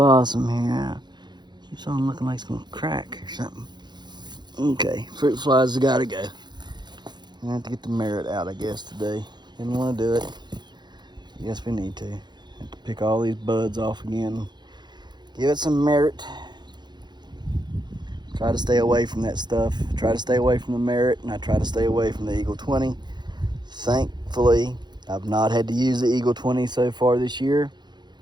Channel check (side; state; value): left; late; 0.21 ms